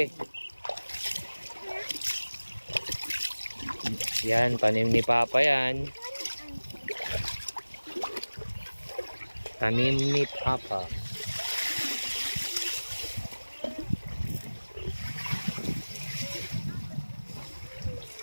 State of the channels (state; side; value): inverted; both; correlation -1.00